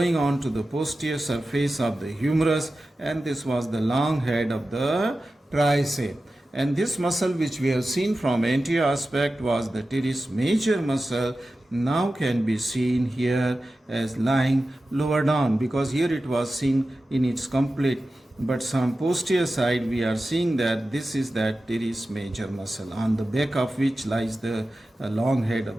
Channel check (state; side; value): normal; both; correlation 0.94